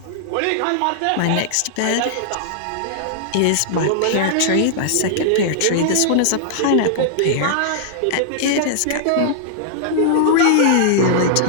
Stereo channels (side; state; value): both; different; correlation -0.01